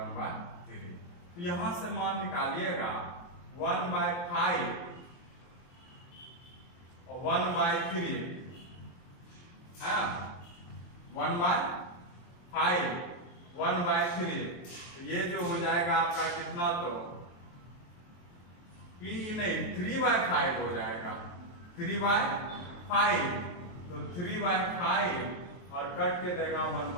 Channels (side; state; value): right; late; 23 ms